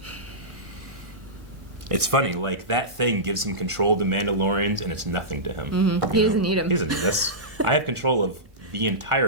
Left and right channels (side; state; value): left; late; 1.4 ms